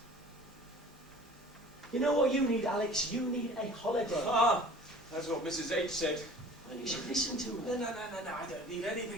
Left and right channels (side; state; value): both; normal; correlation 0.46